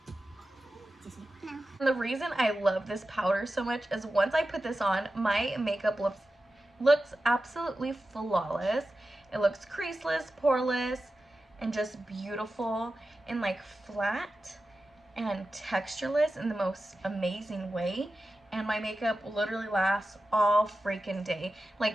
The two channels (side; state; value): both; normal; correlation 0.93